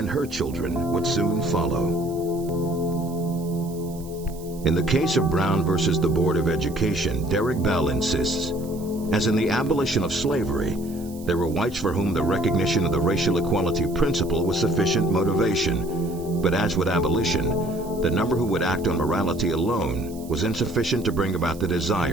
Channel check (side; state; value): right; noise; hiss, 21 dB below the sound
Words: her children would soon follow. In the case of Brown versus the Board of Education, Derek Bell insists, as in the abolition of slavery, there were whites for whom the recognition of the racial equality principle was sufficient motivation. But as with abolition, the number who would act on morality alone was insufficient to bring about the